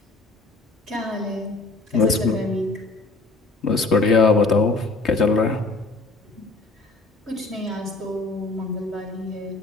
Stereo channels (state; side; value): quieter; right; 3.4 dB